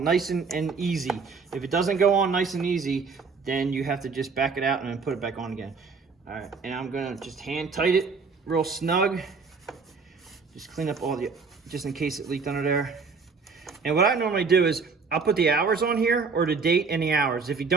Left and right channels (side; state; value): left; quieter; 4.9 dB